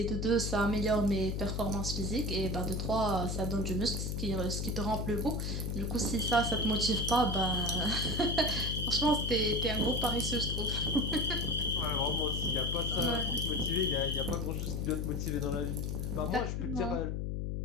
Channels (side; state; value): left; noise; hum, 1 dB below the sound